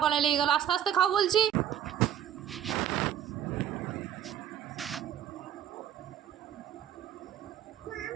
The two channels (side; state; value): left; quieter; 10.4 dB